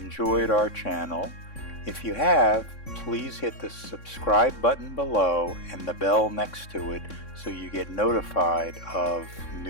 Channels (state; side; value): late; right; 3.6 ms